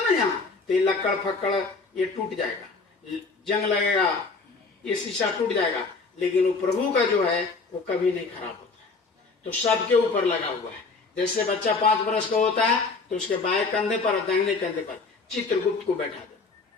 ना, यहाँ तो ये लक्कड़ फक्कड़ ये टूट जाएगा, जंग लगेगा, ये शीशा टूट जाएगा, लेकिन वो प्रभु का जो है वो कभी नहीं खराब होता है। तो सबके ऊपर लगा हुआ है। जैसे बच्चा 5 वर्ष का होता है तो उसके बाएं कंधे पर, दाहिने कंधे पर चित्रगुप्त को बैठा दो।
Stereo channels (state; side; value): quieter; right; 4.2 dB